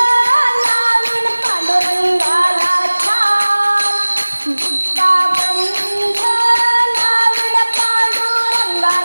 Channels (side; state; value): both; inverted; correlation -1.00